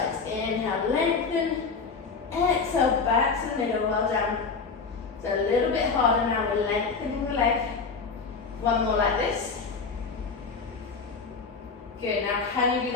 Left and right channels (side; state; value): right; quieter; 4.8 dB